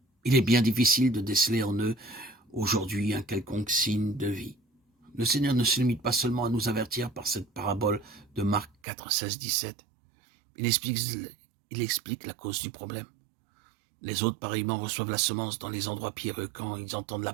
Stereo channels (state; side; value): drops out; left; at 8.7 s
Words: Il est bien difficile de déceler en eux aujourd'hui un quelconque signe de vie. Le Seigneur ne se limite pas seulement à nous avertir par cette parabole de Marc 4, 16, 17. Il explique la cause du problème. Les autres, pareillement, reçoivent la semence dans les endroits pierreux quand ils entendent la